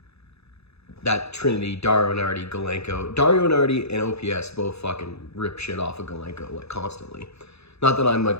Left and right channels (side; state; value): right; late; 0.79 ms